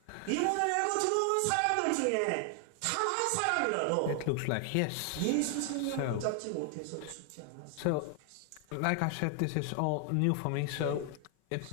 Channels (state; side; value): different; both; correlation 0.00